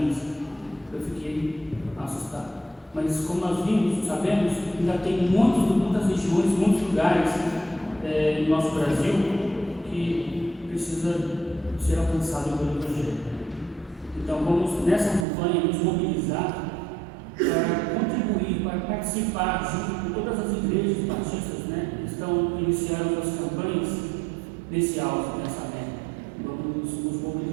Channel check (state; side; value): drops out; left; at 15.2 s